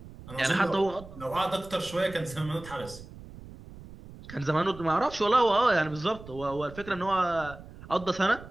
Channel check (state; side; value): noise; right; rumble, 16 dB below the sound